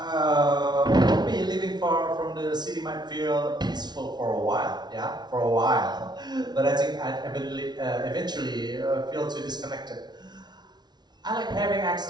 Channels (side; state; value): left; late; 0.20 ms